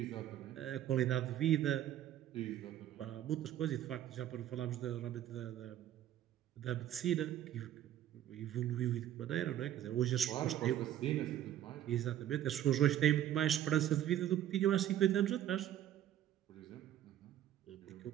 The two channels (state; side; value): quieter; left; 11.6 dB